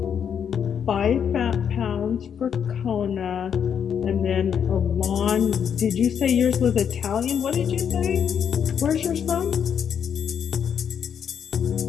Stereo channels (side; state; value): right; quieter; 8.0 dB